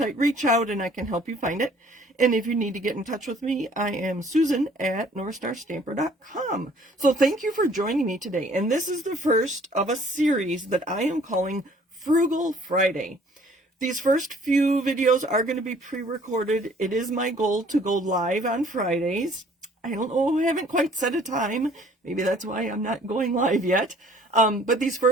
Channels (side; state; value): both; normal; correlation 0.57